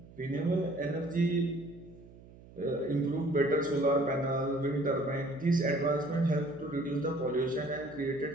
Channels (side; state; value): right; noise; hum, 21 dB below the sound